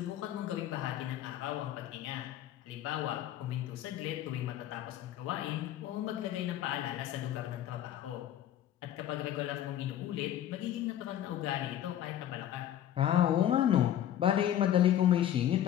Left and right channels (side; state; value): right; quieter; 11.4 dB